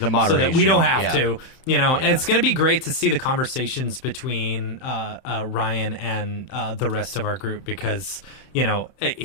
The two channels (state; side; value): late; right; 31 ms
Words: that we don't have to, and it's going to be great to see the conversations between Ryan and the rest of our group, because